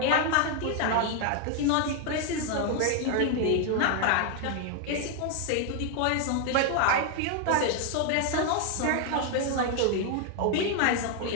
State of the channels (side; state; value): both; different; correlation 0.00